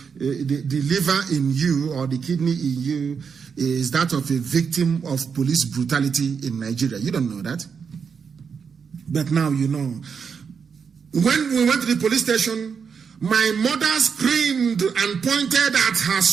liver in you or the kidney in you is that of a victim of police brutality in Nigeria. You don't know that. But now you know. When we went to the police station, my mother screamed and pointed at her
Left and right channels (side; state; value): left; quieter; 6.3 dB